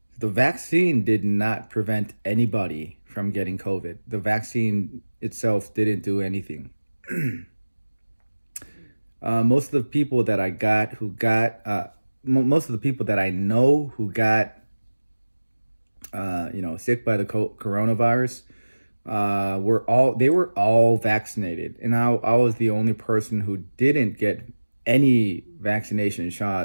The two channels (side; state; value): both; inverted; correlation -1.00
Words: vaccine did not prevent anybody from getting COVID. The vaccine itself didn't do anything. Most of the people that most of the people that I know who got, sick by the coronavirus, they were all vaccinated, and I was the only person who didn't get any vaccination